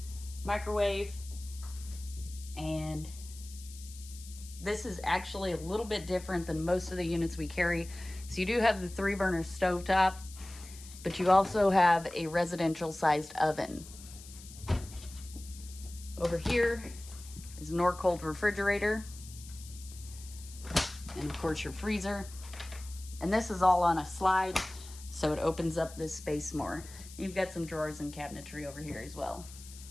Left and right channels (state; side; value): noise; left; hiss, 17 dB below the sound